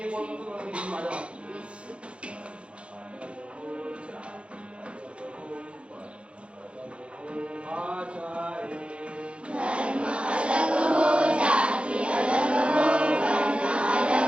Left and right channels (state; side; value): late; left; 0.059 ms